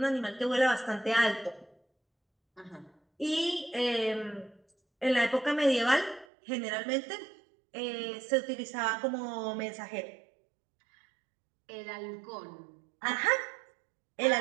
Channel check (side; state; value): left; drops out; at 6.2 s